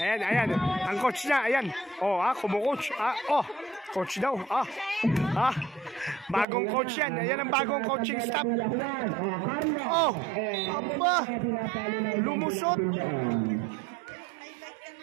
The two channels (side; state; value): left; drops out; at 6.5 s